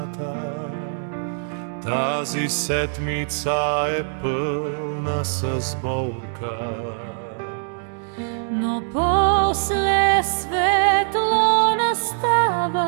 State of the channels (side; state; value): left; silent; digital silence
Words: тази седмица е пълна с болка. Но после светло